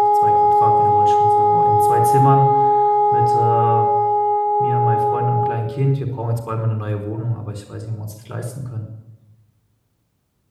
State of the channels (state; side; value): identical; both; correlation 1.00